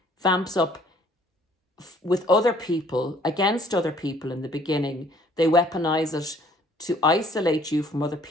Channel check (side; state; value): both; normal; correlation 0.59